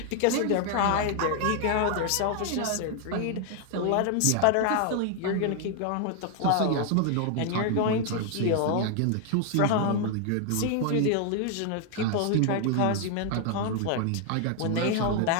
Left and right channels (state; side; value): different; both; correlation 0.00